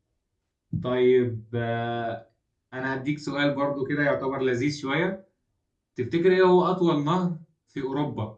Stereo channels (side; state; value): both; identical; correlation 1.00